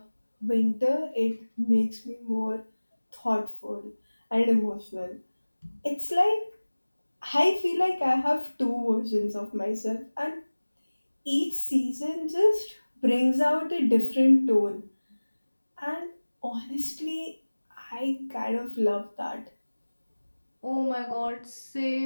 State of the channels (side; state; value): both; inverted; correlation -1.00